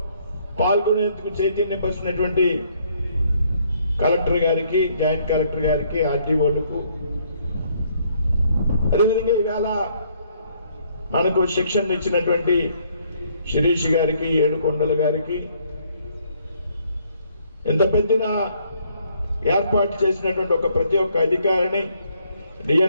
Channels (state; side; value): inverted; both; correlation -0.67